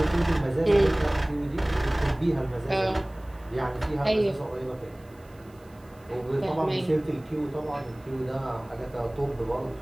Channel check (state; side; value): noise; right; hiss, 30 dB below the sound